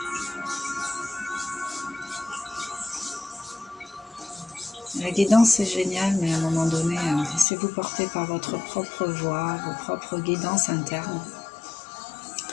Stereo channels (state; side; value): drops out; right; at 7.5 s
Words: La guidance c'est génial, mais à un moment donné, laissez-vous porter par votre propre voix, vos propres guidances internes.